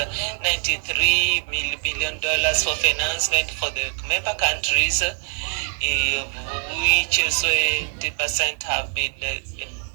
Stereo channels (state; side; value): silent; left; digital silence